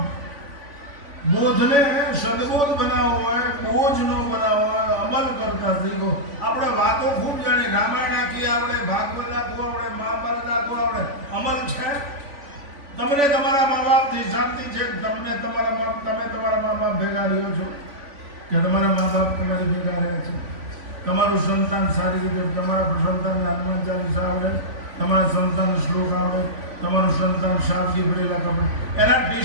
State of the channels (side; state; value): left; late; 3.5 ms